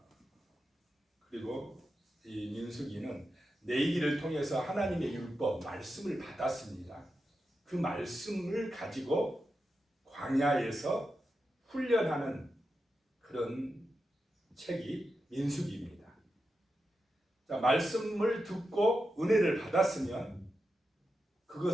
그리고 이 민수기는 내기를 통해서 하나님의 율법, 말씀을 받았습니다. 그 말씀을 가지고 광야에서 훈련하는 그런 책이 민수기입니다. 자, 말씀을 듣고 은혜를 받았으면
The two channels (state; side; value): normal; both; correlation 0.89